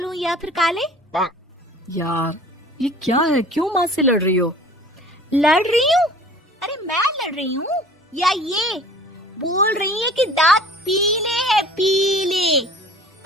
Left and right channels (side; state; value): both; normal; correlation 0.47